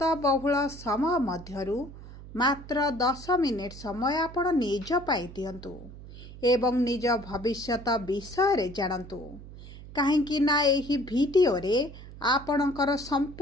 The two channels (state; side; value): noise; right; hum, 15 dB below the sound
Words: बहुल समय मध्यरु मात्र 10 मिनिट समय आपण निज पाई दियंतु एवं निज भविष्यत विषय रे जानंतु काहेकि ना एही भिडियो रे आपणकर